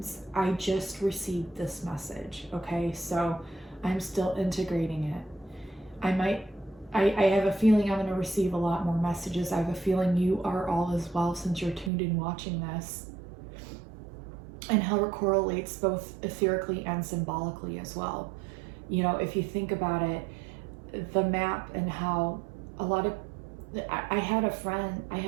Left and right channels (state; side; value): drops out; left; at 11.9 s